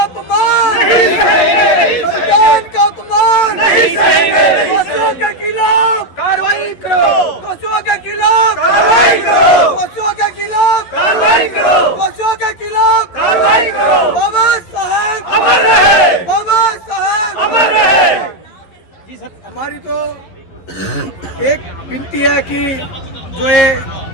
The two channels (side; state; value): right; late; 11 ms